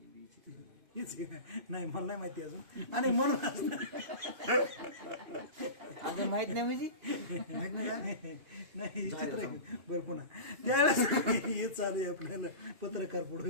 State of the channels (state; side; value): late; left; 2.5 ms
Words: नाही मला नाही माहिती अजून. आणि म्हणून माहित नाही म्हणजे माहित नाही का? नाही हे चित्र आहे. बरं पुन्हा त्यावेळेस हे चालू आहे आपल्याला पत्रकार